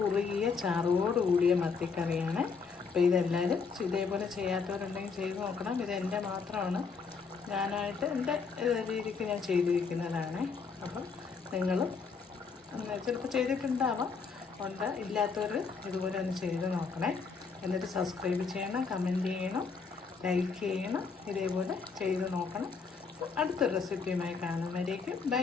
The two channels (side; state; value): right; quieter; 5.2 dB